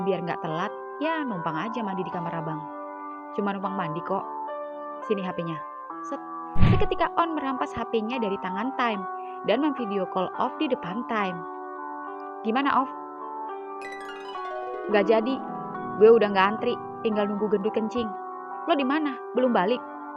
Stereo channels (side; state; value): both; identical; correlation 1.00